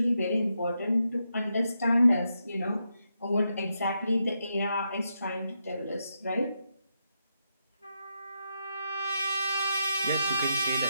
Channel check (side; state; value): both; inverted; correlation -0.83